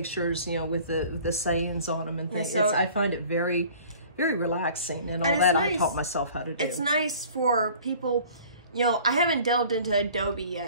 you know, with the sayings on them and things. So, I find it very, very relaxing, and all that nice. I taught myself how to do. It's nice for people. You know, I haven't delved into Adobe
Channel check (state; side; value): inverted; both; correlation -0.48